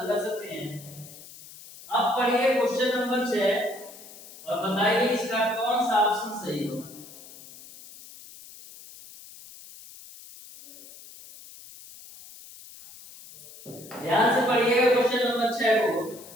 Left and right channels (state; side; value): noise; left; hiss, 18 dB below the sound